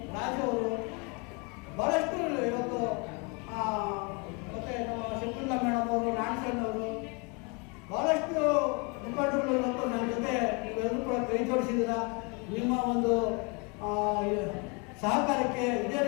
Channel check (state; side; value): quieter; right; 31.2 dB